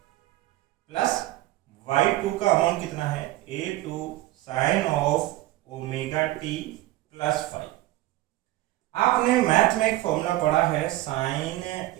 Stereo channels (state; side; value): quieter; left; 16.8 dB